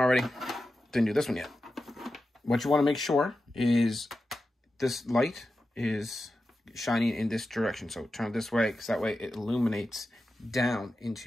Didn't do this one yet. What you want to make sure is this light is shining in this direction. So turn it this way, because that way it illuminates down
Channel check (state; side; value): normal; both; correlation 0.92